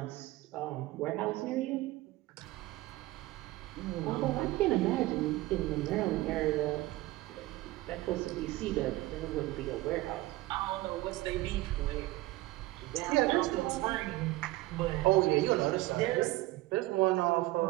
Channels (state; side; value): quieter; left; 18.6 dB